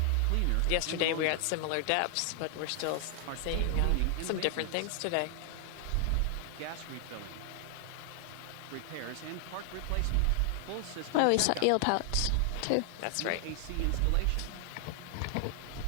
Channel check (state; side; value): different; both; correlation 0.00